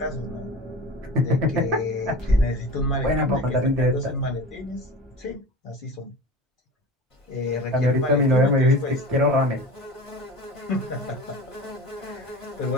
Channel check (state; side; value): normal; both; correlation 0.34